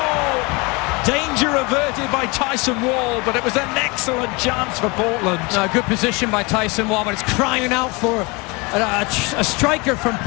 Danger averted by Tyson Wall, but it was an excellent chance for Portland. Good position by Tyson Wall, but it's crying out for a striker from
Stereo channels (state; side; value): quieter; right; 27.2 dB